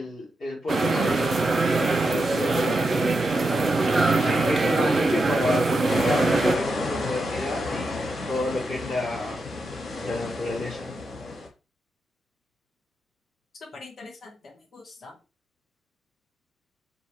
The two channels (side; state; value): both; normal; correlation 0.86